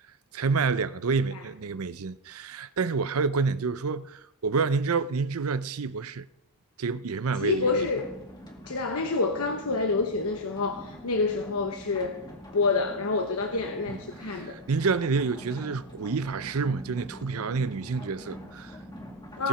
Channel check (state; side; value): normal; both; correlation 0.01